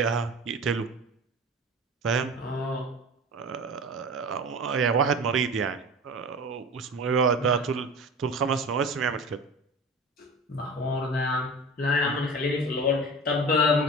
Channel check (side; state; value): both; normal; correlation 0.35